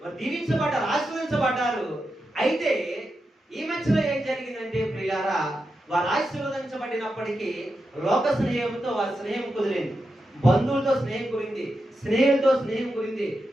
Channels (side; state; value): both; normal; correlation 0.88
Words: వారు దీవించబడ్డారు, ఆశీర్వదించబడ్డారు. అయితే ఈ మధ్యలో ఏం జరిగిందంటే ప్రియులారా, వారు ఆశీర్వదించబడినప్పటికీ లోక స్నేహంతో వారి స్నేహం కుదిరింది, బంధువులతో స్నేహం కుదిరింది, స్నేహితులతో స్నేహం కుదిరింది.